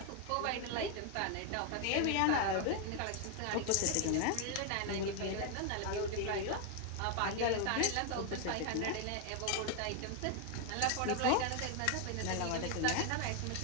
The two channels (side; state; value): both; different; correlation 0.01